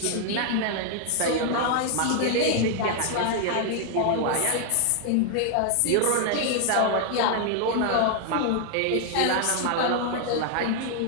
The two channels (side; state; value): both; different; correlation 0.00